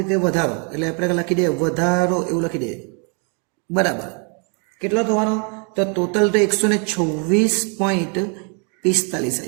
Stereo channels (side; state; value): left; quieter; 37.8 dB